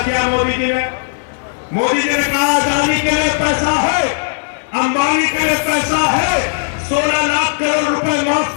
मोदी जी ने? मोदी जी ने कहा अदानी के लिए पैसा है, अंबानी के लिए पैसा है, 16 लाख करोड़ रुपए माफ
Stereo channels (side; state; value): right; silent; 57 dB below the other